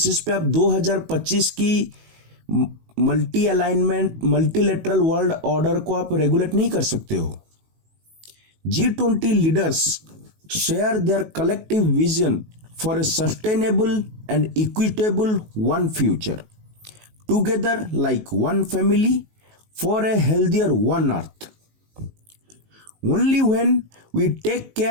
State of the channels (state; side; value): late; left; 19 ms